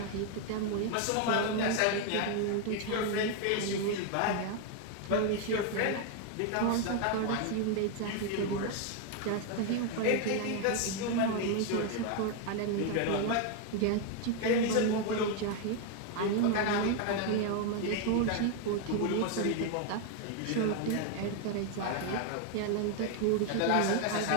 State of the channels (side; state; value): both; different; correlation 0.01